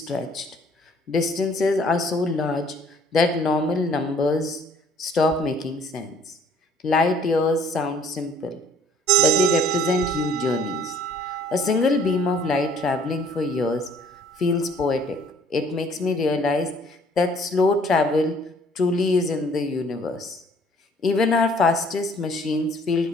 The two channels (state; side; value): normal; both; correlation 0.58